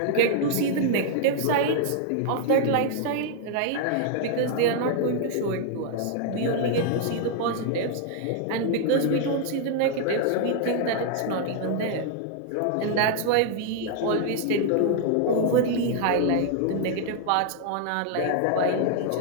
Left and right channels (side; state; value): both; different; correlation 0.00